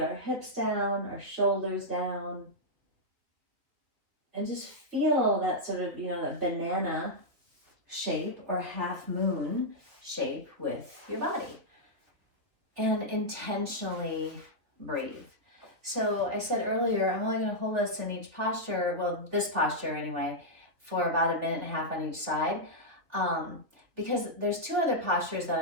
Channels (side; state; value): left; late; 3.2 ms